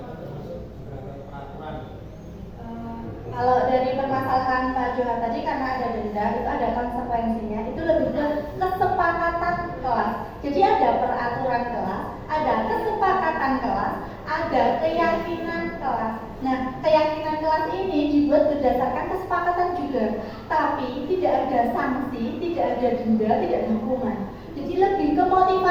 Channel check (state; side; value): identical; both; correlation 1.00